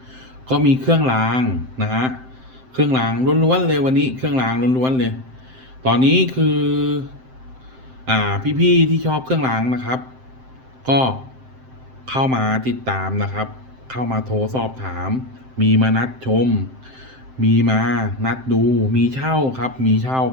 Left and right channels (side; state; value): left; late; 7.7 ms